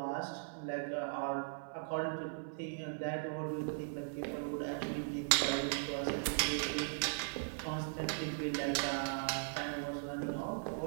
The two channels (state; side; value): silent; left; digital silence